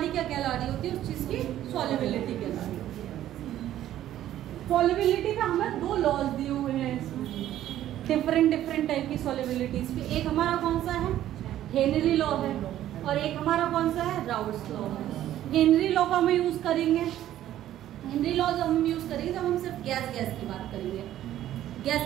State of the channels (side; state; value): left; quieter; 12.6 dB